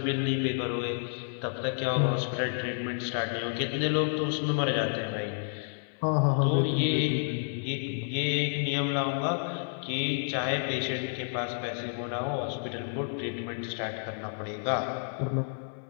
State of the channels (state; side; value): silent; right; 58 dB below the other